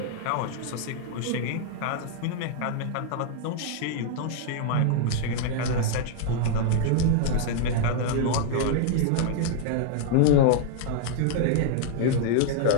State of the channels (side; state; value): both; different; correlation -0.01